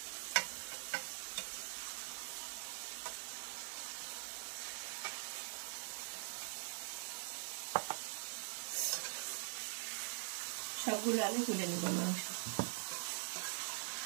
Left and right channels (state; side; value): silent; left; digital silence